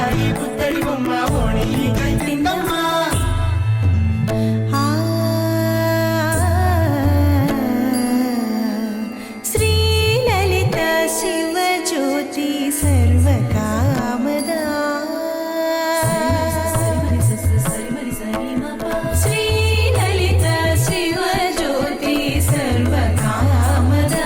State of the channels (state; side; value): identical; both; correlation 1.00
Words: పుత్తడి బొమ్మ ఓణి కట్టిందమ్మా శ్రీలలిత శివజ్యోతి సర్వకామదా శ్రీలలిత శివజ్యోతి